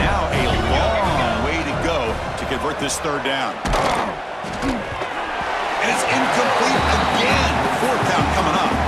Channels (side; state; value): both; identical; correlation 1.00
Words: a long way to go to convert this third down. And it's incomplete again. Fourth down coming up.